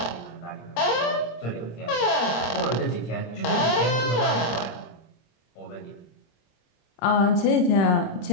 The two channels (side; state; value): right; late; 26 ms